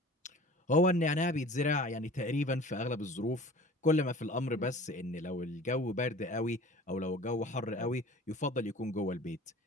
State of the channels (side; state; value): both; normal; correlation 0.43